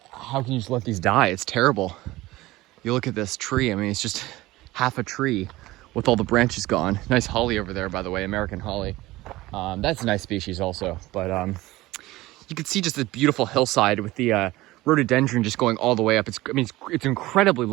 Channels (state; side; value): quieter; left; 18.5 dB